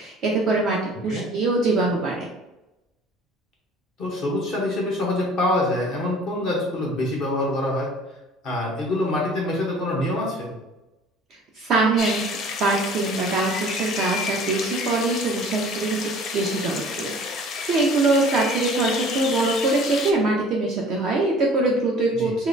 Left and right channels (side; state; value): both; normal; correlation 0.49